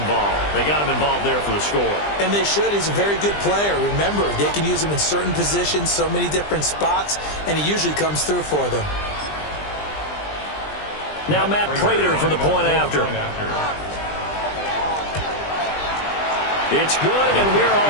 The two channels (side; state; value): right; late; 20 ms